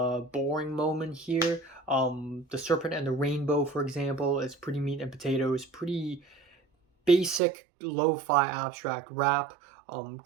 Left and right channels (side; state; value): left; drops out; at 7.4 s